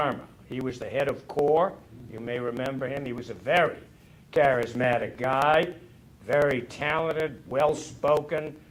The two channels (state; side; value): identical; both; correlation 1.00